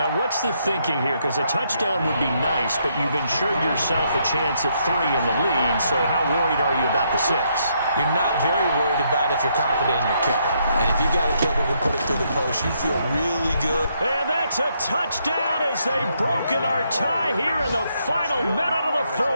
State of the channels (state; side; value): inverted; both; correlation -0.75